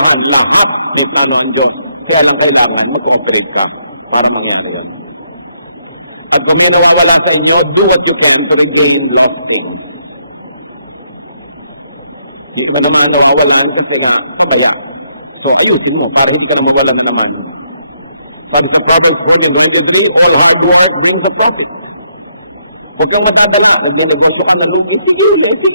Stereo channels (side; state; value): both; inverted; correlation -0.75